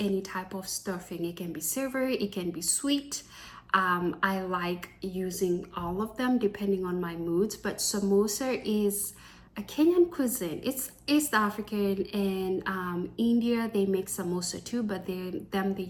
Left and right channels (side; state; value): both; identical; correlation 1.00